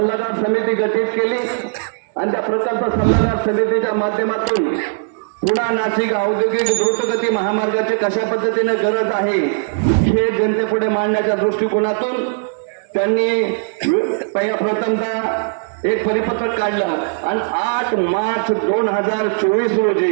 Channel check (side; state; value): left; silent; digital silence